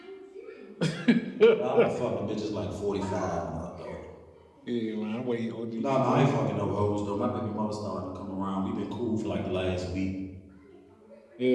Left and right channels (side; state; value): both; identical; correlation 1.00